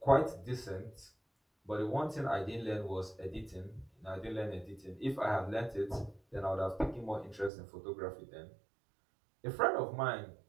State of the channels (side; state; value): left; drops out; at 7.5 s